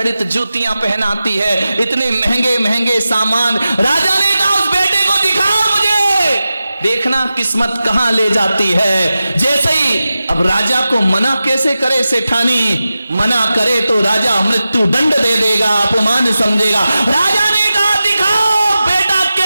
जूतियां पहनाती है, इतने महंगे महंगे सामान। राजा ने कहा उस बेटे को दिखाओ मुझे, देखना किस्मत कहां ले जाती है। जैसे ही अब राजा को मना कैसे करे सेठानी, मना करे तो राजा मृत्यु दंड दे देगा, अपमान समझेगा। राजा ने कहा दिखाओ बेटा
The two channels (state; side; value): inverted; both; correlation -0.94